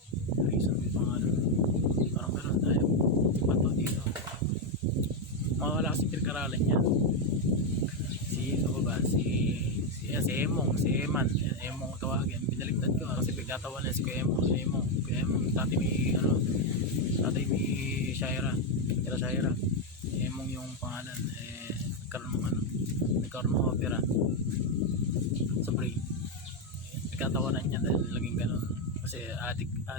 yung pangalan, parang meron tayo si Bato dito, mawala kasi pinag-aralan niya. Si Emong tawagin, binaligtad ko kasi pagkatawan niya si Emong dati may Shaira, Emong yung pangalan, nagkaroon ng opera sa brain. Nagkatawanan niya dahil laging ganun kasi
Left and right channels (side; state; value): both; normal; correlation 0.04